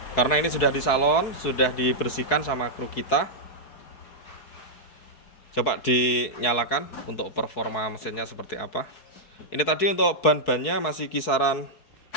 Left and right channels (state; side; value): late; right; 4.6 ms